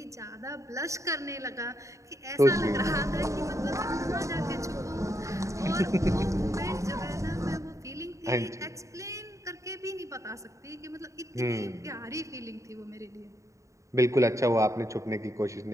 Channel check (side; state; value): left; late; 0.15 ms